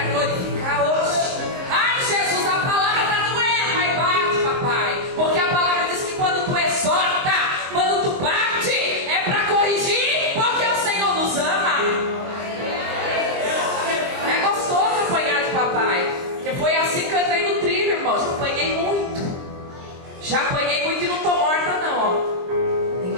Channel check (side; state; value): left; late; 23 ms